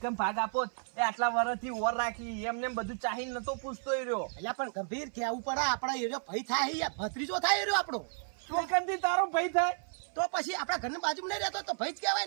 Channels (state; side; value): silent; left; 56 dB below the other